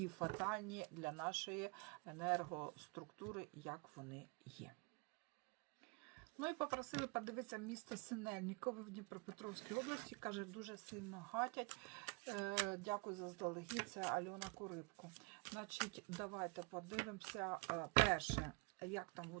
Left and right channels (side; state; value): left; quieter; 28.4 dB